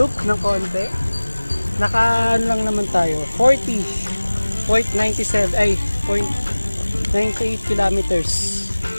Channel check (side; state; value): both; inverted; correlation -1.00